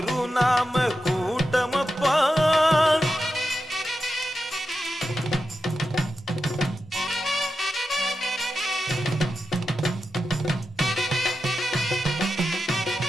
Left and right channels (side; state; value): both; normal; correlation 0.90